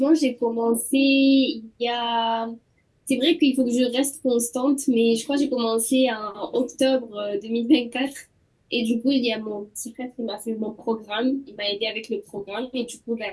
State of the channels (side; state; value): both; identical; correlation 1.00